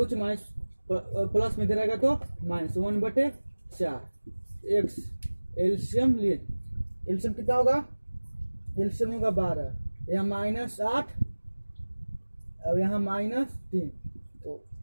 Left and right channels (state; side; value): inverted; both; correlation -1.00